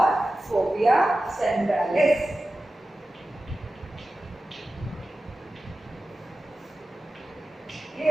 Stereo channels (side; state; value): both; normal; correlation 0.94